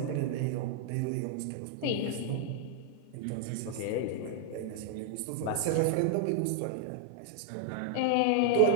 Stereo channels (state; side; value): different; both; correlation 0.00